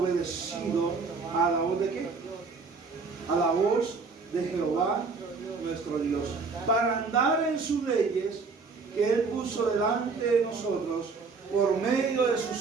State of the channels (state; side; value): quieter; left; 4.6 dB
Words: a la voz de qué, a la voz de Jehová nuestro Dios, para andar en sus leyes que él puso delante de nosotros por medio de sus